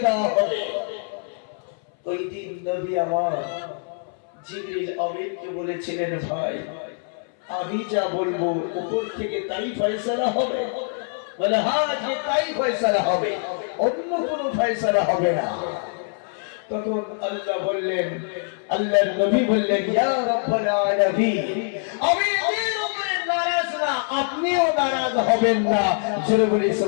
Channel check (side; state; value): right; silent; 63 dB below the other